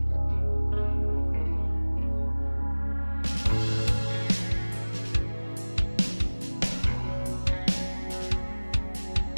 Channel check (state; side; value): inverted; both; correlation -1.00